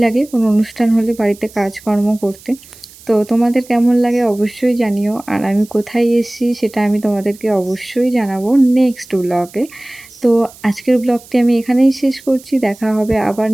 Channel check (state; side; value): noise; right; hiss, 22 dB below the sound